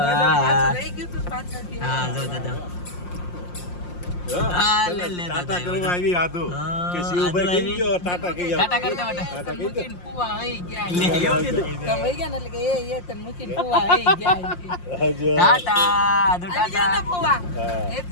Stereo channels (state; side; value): late; right; 5.7 ms